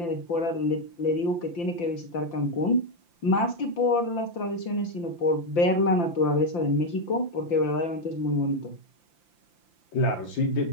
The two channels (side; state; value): right; late; 5.8 ms